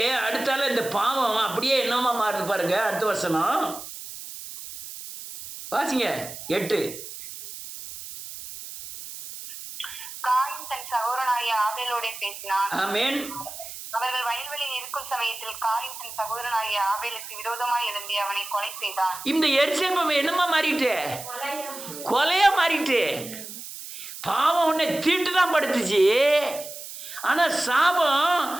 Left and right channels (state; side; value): noise; right; hiss, 11 dB below the sound